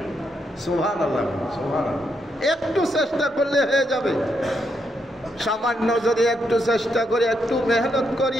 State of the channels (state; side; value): normal; both; correlation 0.79